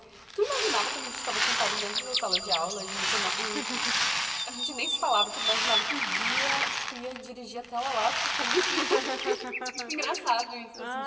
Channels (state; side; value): identical; both; correlation 1.00